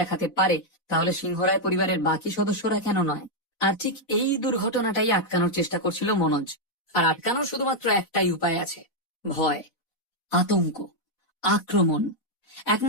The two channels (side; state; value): right; late; 4.1 ms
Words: পারে তাহলে সিংহরায় পরিবারের বাকি সদস্যরা কেন নয়? আর ঠিক এই দুর্ঘটনাটাই আটকানোর চেষ্টা করছিল মনোজ। আর আটকানোর শুধুমাত্র একটাই উপায় আছে, ভয়, আতঙ্ক, আক্রমণ।